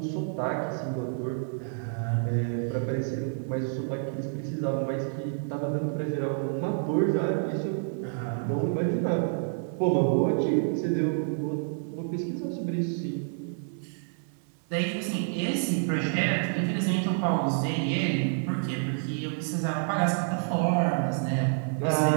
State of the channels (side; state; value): left; silent; 59 dB below the other